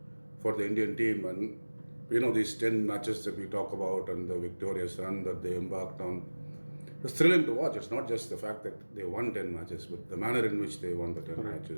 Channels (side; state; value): both; inverted; correlation -1.00